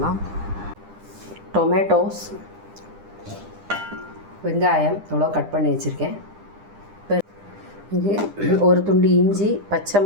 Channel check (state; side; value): late; left; 9.9 ms